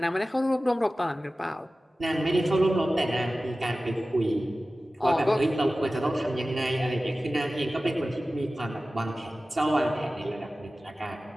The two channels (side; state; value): both; normal; correlation 0.96